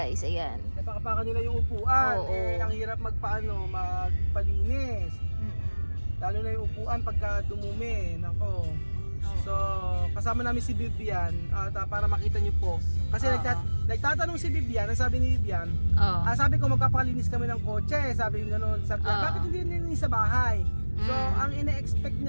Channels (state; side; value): inverted; both; correlation -1.00